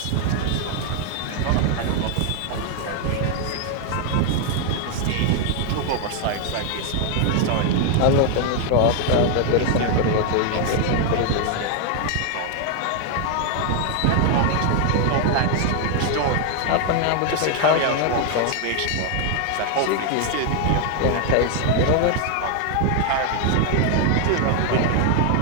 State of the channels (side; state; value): both; different; correlation 0.00